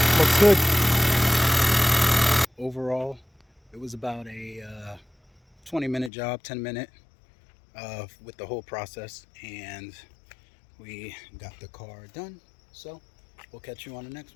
Looks good. Overall, it was about a 20-minute job, 10-minute with the whole process, and we got the car done. So we'll catch you on the next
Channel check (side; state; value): right; drops out; at 6.1 s